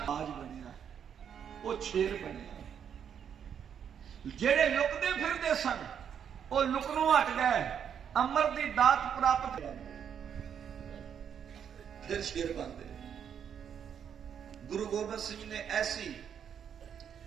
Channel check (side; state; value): left; quieter; 8.2 dB